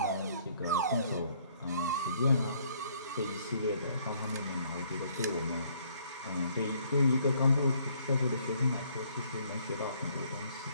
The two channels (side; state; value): both; inverted; correlation -0.65